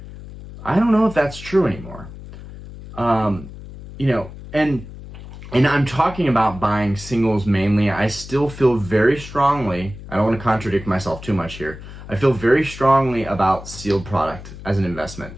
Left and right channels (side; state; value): left; noise; hum, 14 dB below the sound